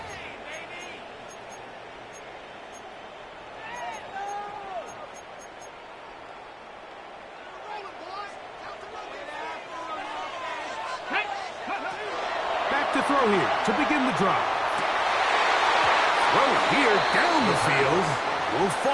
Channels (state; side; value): identical; both; correlation 1.00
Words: Back to throw here to begin the drive. Throw here down the field. Will